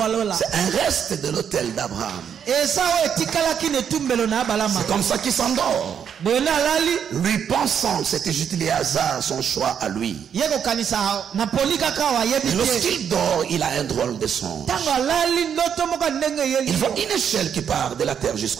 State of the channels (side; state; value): left; quieter; 8.1 dB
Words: alola. C'est un reste de l'autel d'Abraham. Eza o etikalaki ne tumbelo na balama. C'est comme ça qu'il s'endort. Bona lali. Lui pensant, c'était juste le hasard, son choix à lui. Yeko kanisa na polika kawa yebi. Et lorsqu'il dort, il a un drôle de songe. Tango lali ndoto moko ndenge yeli. Il voit une échelle qui part de la terre